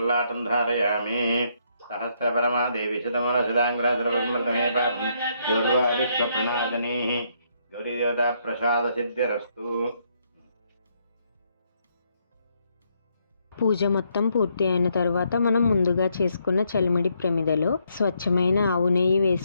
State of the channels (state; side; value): inverted; both; correlation -0.74